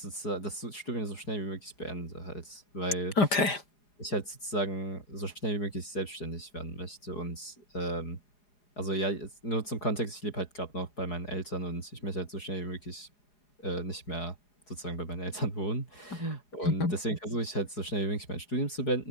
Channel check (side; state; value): right; late; 4.7 ms